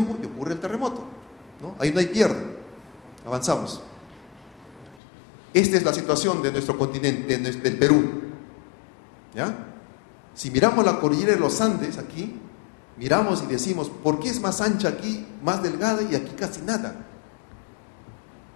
y ocurre el terremoto, ¿no? Ahí no hay pierde. Avanzamos. Esta es la situación de nuestro continente, del Perú. ¿Ya? Si miramos la cordillera de los Andes aquí, miramos y decimos, ¿por qué es más ancha aquí, más delgada y aquí casi nada?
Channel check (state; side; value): drops out; right; at 5.0 s